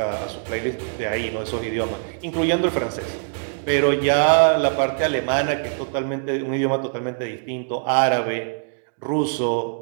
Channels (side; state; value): left; silent; digital silence